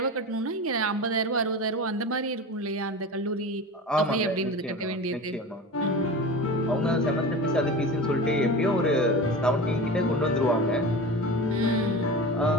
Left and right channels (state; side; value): normal; both; correlation 0.31